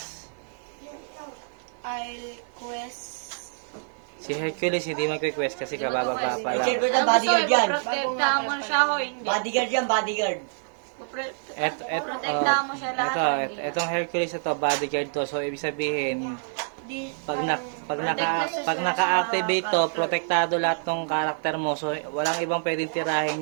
I'll quest. Si Hercules hindi mag-request kasi kabababa pa I-check ko lang. na bodyguard yan. Protektahan mo siya o hindi? Bodyguard yan, bodyguard. Protektahan mo siya lahat. Etong Hercules ito, bodyguard to. So, ibig sabihin, Di, pag naka-activate to, protektado lahat ng karakter mo. So, walang ibang pwedeng tirahin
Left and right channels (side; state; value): left; silent; 61 dB below the other